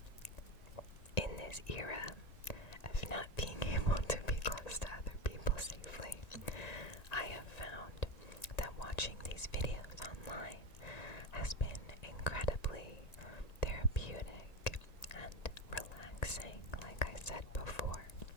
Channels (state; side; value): late; right; 1.9 ms